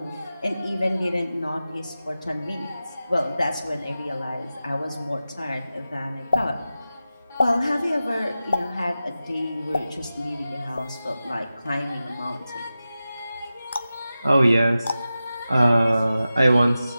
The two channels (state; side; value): inverted; both; correlation -0.93